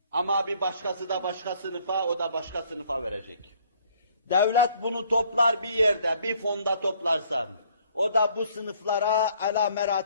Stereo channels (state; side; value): inverted; both; correlation -0.61